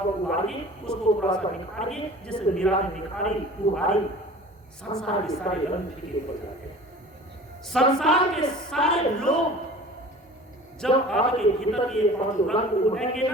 उभारिए, उसको थोड़ा सा निखारिए, जिससे मीरा ने निखारी उभारी, संसार के सारे रंग फीके पड़ जाते हैं। संसार के सारे लोग जब आपके भीतर के 5 रंग उभरेंगे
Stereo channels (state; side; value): normal; both; correlation 0.42